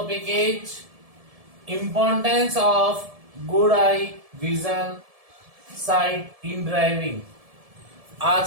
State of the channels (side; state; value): left; late; 1.7 ms